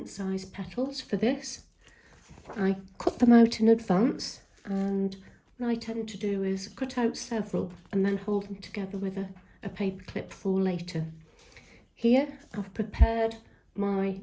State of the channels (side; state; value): both; identical; correlation 1.00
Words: size petals for this. I cut them out in advance, and what I tend to do is cut out several and then hold them together with a paper clip for later. Here I've prepared my